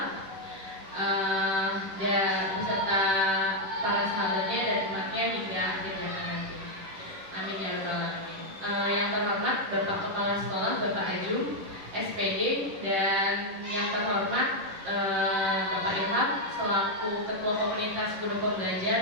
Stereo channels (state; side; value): late; left; 11 ms